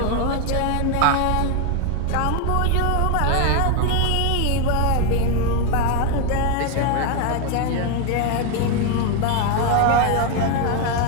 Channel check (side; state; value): both; different; correlation 0.01